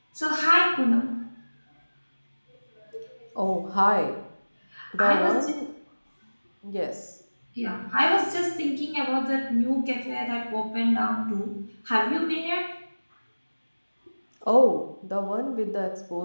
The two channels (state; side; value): inverted; both; correlation -1.00